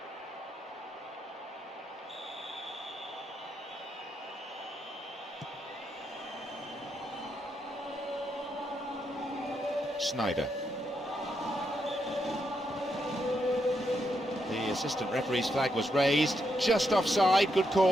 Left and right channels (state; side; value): normal; both; correlation 0.81